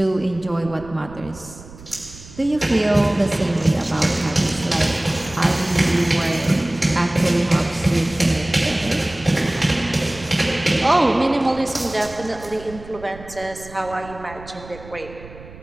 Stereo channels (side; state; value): right; noise; rumble, 18 dB below the sound